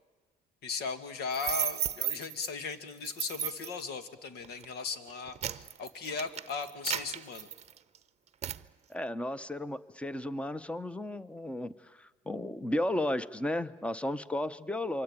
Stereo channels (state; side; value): normal; both; correlation 0.43